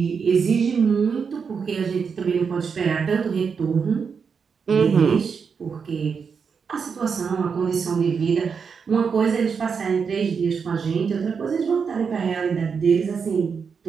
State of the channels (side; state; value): left; quieter; 6.0 dB